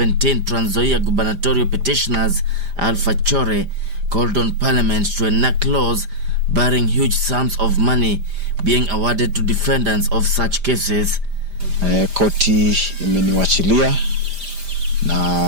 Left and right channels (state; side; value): late; left; 5.0 ms